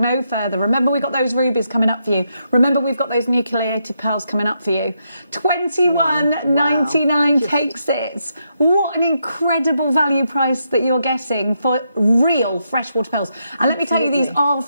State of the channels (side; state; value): both; inverted; correlation -0.81